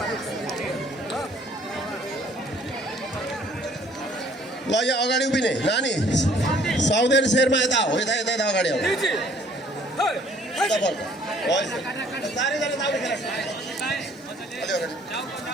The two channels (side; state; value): both; normal; correlation 0.58